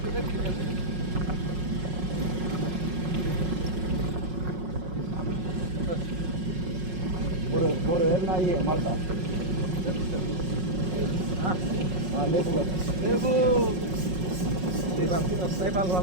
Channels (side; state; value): left; late; 5.5 ms